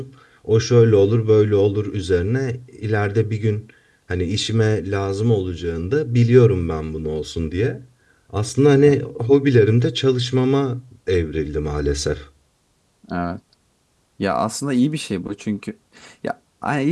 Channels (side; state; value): both; identical; correlation 1.00